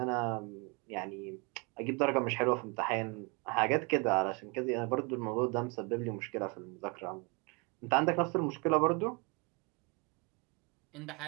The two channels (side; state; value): left; quieter; 30.3 dB